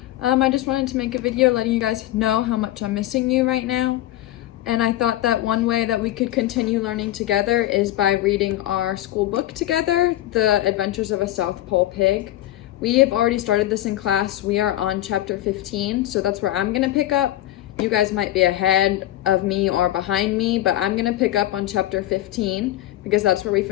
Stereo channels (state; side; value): quieter; right; 14.7 dB